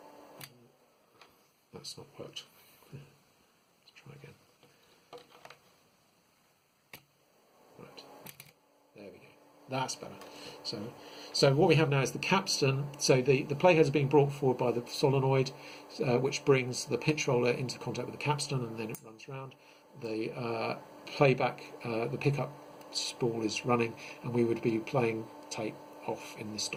That's not worked. Let's try again. That's better. So what we have now is the capstan. So the playheads are being brought forward by the solenoid, which brings the pinch roller into contact with the capstan, and then it runs round. The playback, the pickup spool is running, and we would be playing tape off in this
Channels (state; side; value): identical; both; correlation 1.00